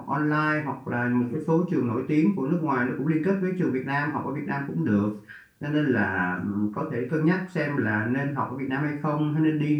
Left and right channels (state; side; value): identical; both; correlation 1.00